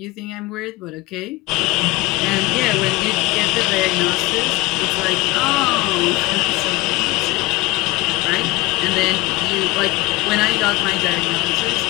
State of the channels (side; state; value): right; quieter; 20.7 dB